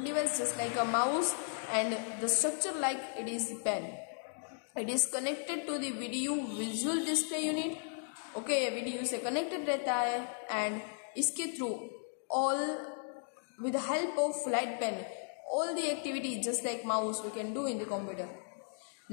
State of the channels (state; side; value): silent; right; digital silence